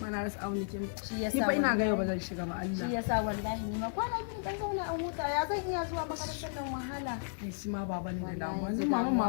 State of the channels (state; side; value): silent; right; digital silence